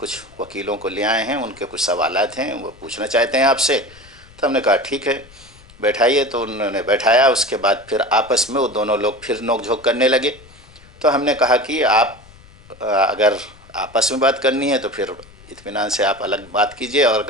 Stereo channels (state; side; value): noise; left; rumble, 24 dB below the sound